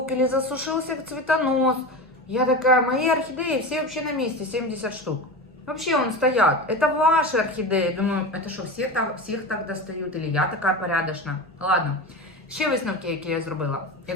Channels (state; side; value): normal; both; correlation 0.26